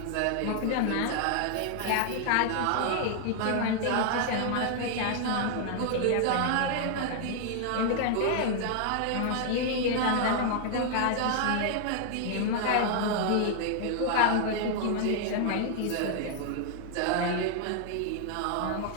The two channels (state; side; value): different; both; correlation 0.00